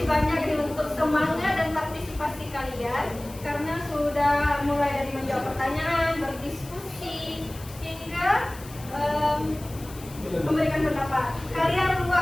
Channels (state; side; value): noise; left; hiss, 18 dB below the sound